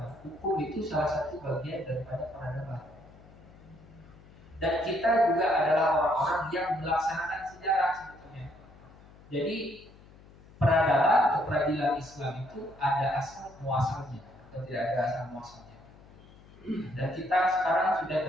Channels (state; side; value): noise; left; hum, 23 dB below the sound